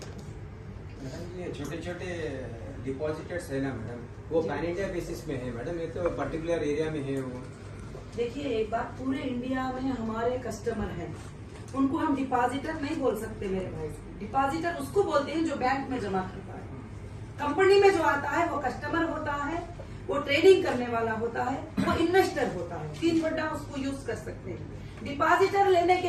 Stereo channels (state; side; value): identical; both; correlation 1.00